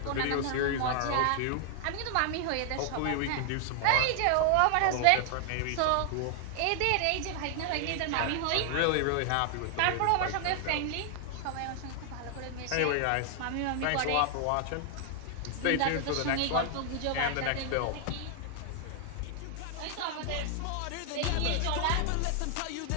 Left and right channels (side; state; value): both; different; correlation 0.00